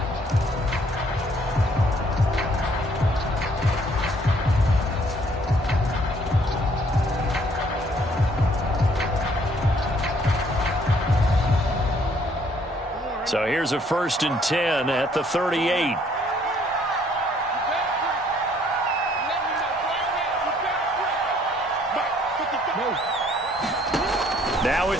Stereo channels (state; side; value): normal; both; correlation 0.63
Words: So here's a 1st and 10 at the 38. Now